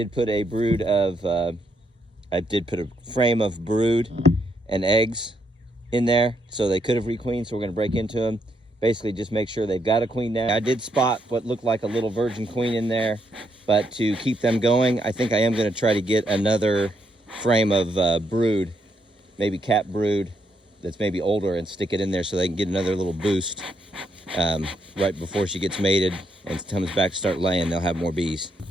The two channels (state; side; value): normal; both; correlation 0.76